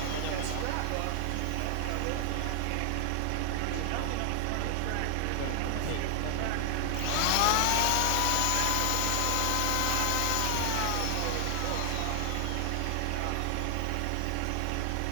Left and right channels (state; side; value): different; both; correlation 0.00